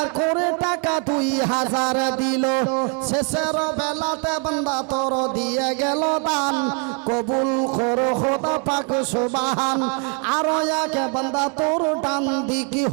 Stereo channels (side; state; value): left; quieter; 36.1 dB